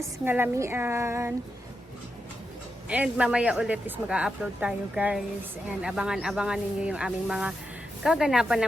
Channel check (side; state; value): both; normal; correlation 0.86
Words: ngalamian. And mamaya ulit is mag-upload tayo guys. And abangan-abangan ninyo yung aming mga kaganapan